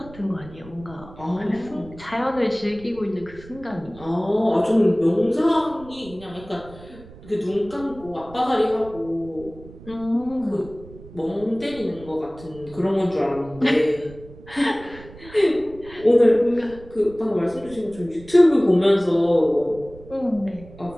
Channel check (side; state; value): right; noise; rumble, 19 dB below the sound